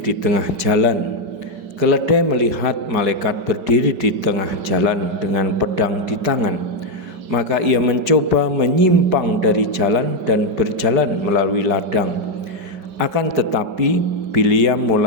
tengah jalan. Keledai melihat malaikat berdiri di tengah jalan dengan pedang di tangan. Maka ia mencoba menyimpang dari jalan dan berjalan melalui ladang. Akan tetapi Bileam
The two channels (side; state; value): left; late; 5.1 ms